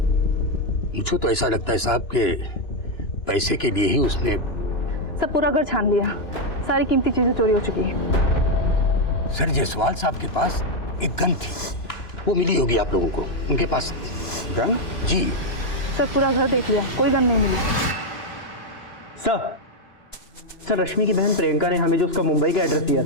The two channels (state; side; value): late; right; 2.9 ms